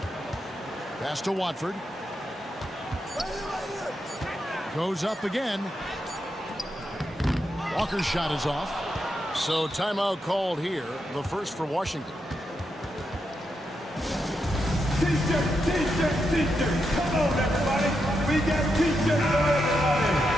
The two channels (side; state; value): both; normal; correlation 0.84